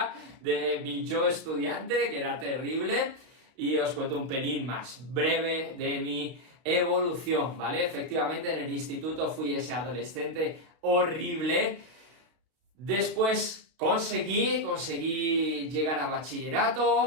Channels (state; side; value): late; left; 32 ms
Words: de mi yo estudiante, que era terrible, y os cuento un pelín más breve de mi evolución, ¿vale? Efectivamente, en el instituto fui ese adolescente horrible. Después conseguí llegar a